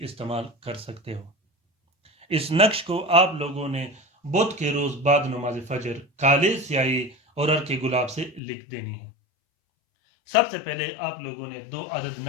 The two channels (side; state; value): right; drops out; at 8.4 s